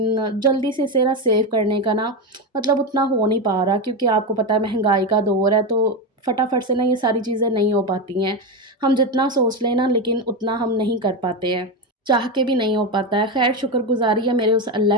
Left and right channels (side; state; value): both; normal; correlation 0.13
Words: जल्दी से इसे ना सेव करने का ना मतलब उतना हो नहीं पा रहा, क्योंकि आपको पता है महँगाई का दौर है, तो फटाफट से ना ये सारी चीज़ें नहीं हो पाती हैं। हम जितना सोच लें ना लेकिन उतना हम नहीं कर पाते हैं। चाह के भी नहीं हो पाता है। ख़ैर शुक्रगुज़ारी है मेरे उस